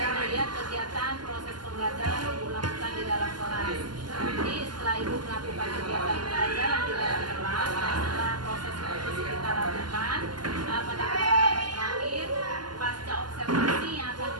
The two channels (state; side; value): late; left; 0.71 ms